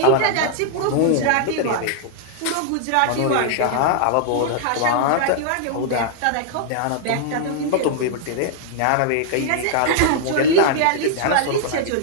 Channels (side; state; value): both; different; correlation -0.01